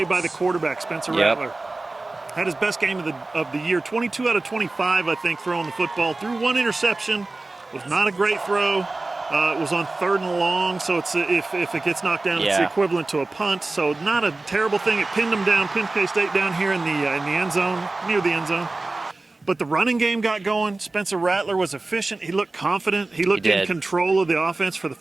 by the quarterback, Spencer Rattler. Had his best game of the year, 22 out of 25, I think, throwing the football. Threw one interception. Was not a great throw. It was on 3rd and long, so it's if it gets knocked down, it's the equivalent to a punt. So not a terrible thing. It pinned them down, pinned K-State down here in the end zone, near the end zone. But the running game got going. Spencer Rattler was efficient. He looked confident. He looked in control of the offense for the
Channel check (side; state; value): left; quieter; 3.2 dB